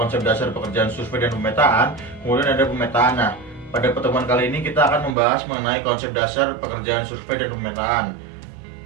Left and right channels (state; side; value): drops out; left; at 5.2 s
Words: dasar pekerjaan survei dan pemetaan, kemudian ada pemetaan. Nah, pada pertemuan kali ini kita akan membahas mengenai konsep dasar pekerjaan survei dan pemetaan,